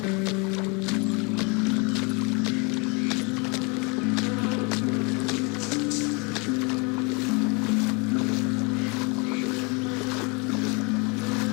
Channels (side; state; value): right; quieter; 30.8 dB